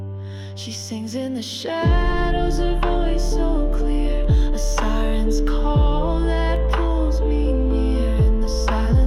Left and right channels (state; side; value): identical; both; correlation 1.00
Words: She sings in the shadows, a voice so clear, a siren's call that pulls me near. In the